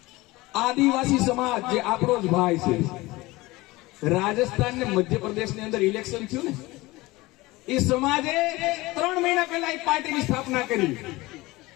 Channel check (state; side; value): quieter; right; 20.7 dB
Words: આદિવાસી સમાજ જે આપણો જ ભાઈ છે, રાજસ્થાન ને મધ્યપ્રદેશ ની અંદર ઇલેક્શન થયું ને, એ સમાજે 3 મહિના પહેલા એક પાર્ટીની સ્થાપના કરી.